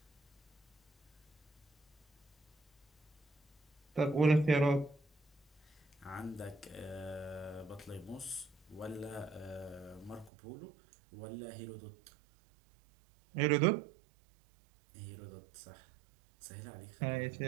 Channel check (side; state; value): left; drops out; at 10.3 s